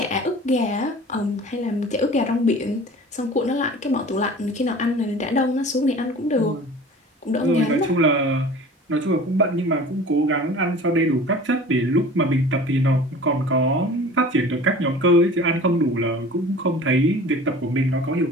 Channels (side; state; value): both; normal; correlation 0.42